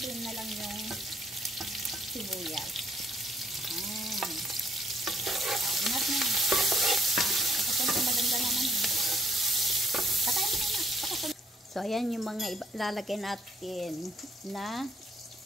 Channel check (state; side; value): normal; both; correlation 0.67